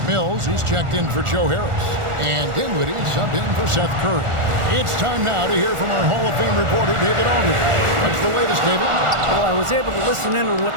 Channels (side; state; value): left; late; 1.4 ms